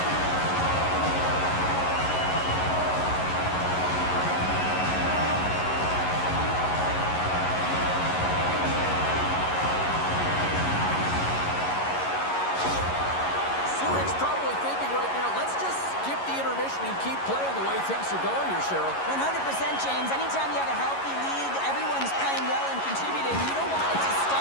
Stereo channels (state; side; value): late; right; 11 ms